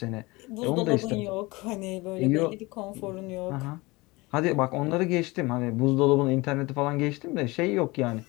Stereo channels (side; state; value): right; quieter; 23.1 dB